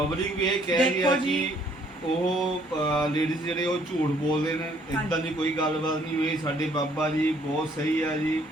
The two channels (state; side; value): normal; both; correlation 0.64